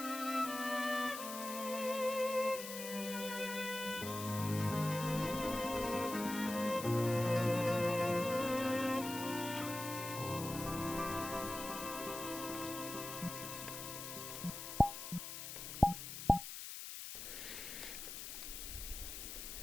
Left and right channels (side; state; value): left; noise; hiss, 8 dB below the sound